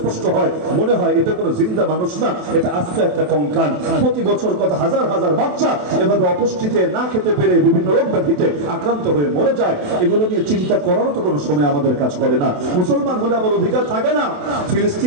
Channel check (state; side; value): late; left; 27 ms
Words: হয়, মনে হয় এটা কোনো জিন্দা মানুষ না, এটা আস্ত একটা কঙ্কাল। প্রতি বছর কত হাজার হাজার বাচ্চা এভাবে অপুষ্টিতে, না খেতে পেরে, বিভিন্ন রোগ ব্যাধিতে আক্রান্ত হয়ে মরে যায়। এগুলো নিয়ে চিন্তা করারও তো কোনো সময় আমাদের কাজ করে না। মুসলমান হলে আমার অধিকার থাকে না?